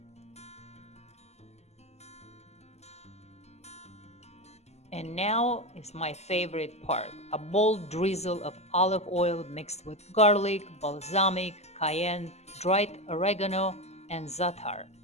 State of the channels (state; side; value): late; right; 0.32 ms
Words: And now is my favorite part: a bold drizzle of olive oil mixed with garlic, balsamic, cayenne, dried oregano, and za'atar.